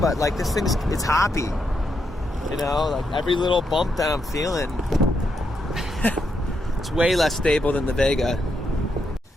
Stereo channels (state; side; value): normal; both; correlation 0.81